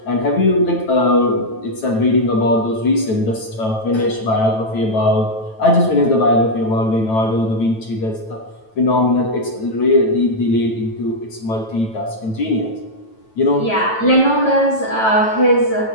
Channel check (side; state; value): right; late; 9.1 ms